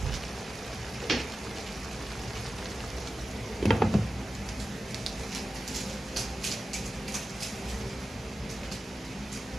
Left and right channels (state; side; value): normal; both; correlation 0.93